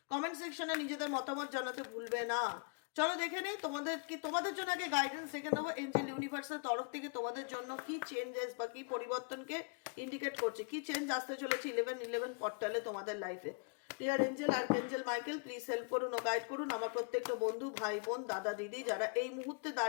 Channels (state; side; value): quieter; right; 37.8 dB